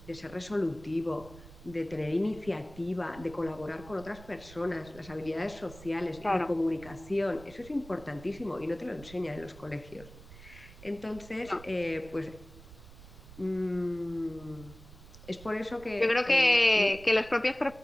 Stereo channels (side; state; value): right; noise; rumble, 18 dB below the sound